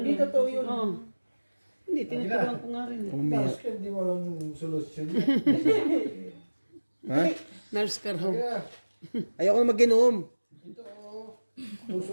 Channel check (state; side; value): inverted; both; correlation -1.00